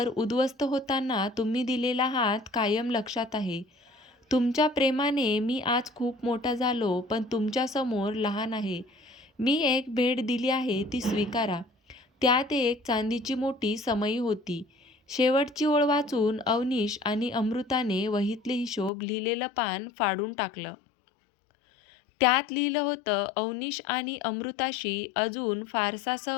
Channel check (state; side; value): drops out; right; at 18.9 s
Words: उद्ध्वस्त होताना तुम्ही दिलेला हात कायम लक्षात आहे. तुमच्या प्रेमाने मी आज खूप मोठा झालो, पण तुमच्यासमोर लहान आहे. मी एक भेट दिली आहे ती स्वीकारा. त्यात एक चांदीची मोठी समई होती. शेवटची ओळ वाचून अवनीश आणि अमृताने वहीतले हिशोब लिहिलेलं पान फाडून टाकलं. त्यात लिहिलं होतं, अवनीश आणि अमृताशी अजून फारसा